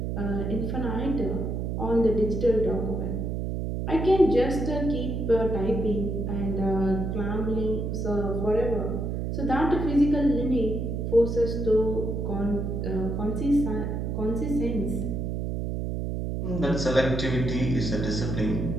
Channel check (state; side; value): noise; right; hum, 2 dB below the sound